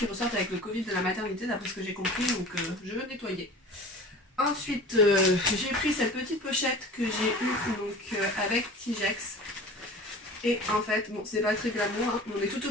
ressortent avec le Covid de la maternité, d'après ce que j'ai compris, donc je veux nettoyer. Ensuite, j'ai pris cette petite pochette que j'ai eue donc, avec Tigex. Et en fait, bon, c'est pas très glamour, hein, on est tout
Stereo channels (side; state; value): both; normal; correlation 0.40